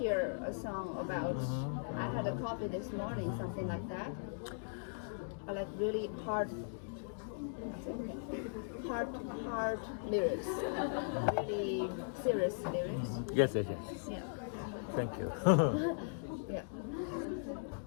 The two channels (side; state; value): right; silent; digital silence